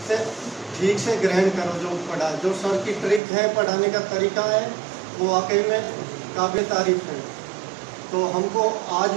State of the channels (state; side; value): drops out; left; at 3.2 s